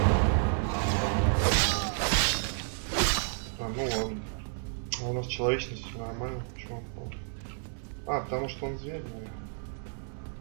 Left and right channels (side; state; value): left; silent; 57 dB below the other